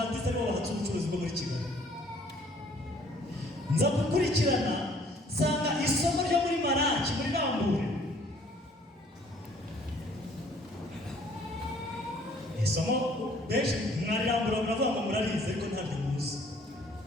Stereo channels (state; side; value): normal; both; correlation 0.58